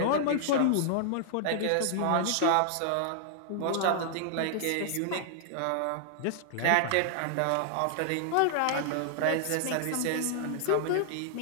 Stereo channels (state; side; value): different; both; correlation -0.01